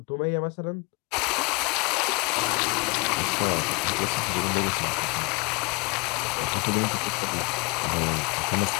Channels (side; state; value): right; quieter; 28.1 dB